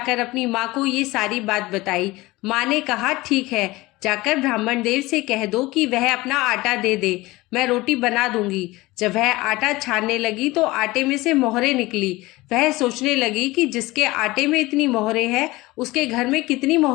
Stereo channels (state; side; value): quieter; right; 20.3 dB